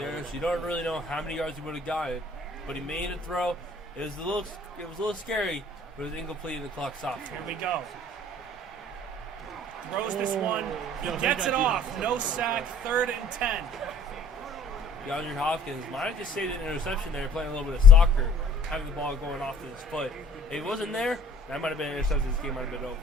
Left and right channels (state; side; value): normal; both; correlation 0.54